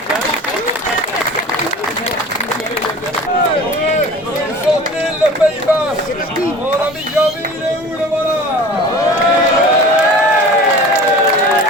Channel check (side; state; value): both; normal; correlation 0.40